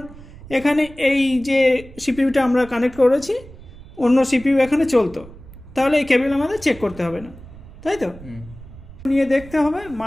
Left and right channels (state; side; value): noise; right; rumble, 18 dB below the sound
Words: এখানে এই যে সিপিইউটা আমরা কানেক্ট করেছি অন্য সিপিইউ এখানে চলতো, তাহলে এই কেবল আমাদের চেক করতে হবে না, তাই তো? নিয়ে দেখতে হবে